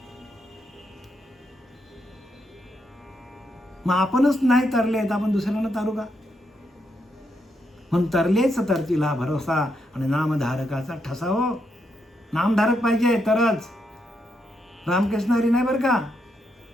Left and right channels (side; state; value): both; normal; correlation 0.80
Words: मग आपणच नाही तरले तर आपण दुसऱ्यांना तारू का? म्हणून तरलेच तरतीला भरोसा आणि नामधारकाचा ठसा. हो, नामधारक पाहिजे तरच. रामकृष्ण हरी नाही बरं का,